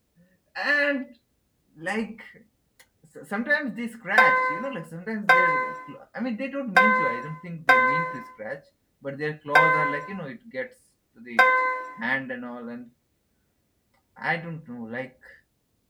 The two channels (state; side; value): identical; both; correlation 1.00